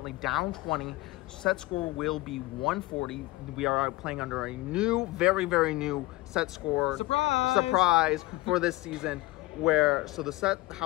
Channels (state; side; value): quieter; right; 19.9 dB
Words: down 20. Set score will be 140. We are playing under a new, very new set score surprise for this season. How the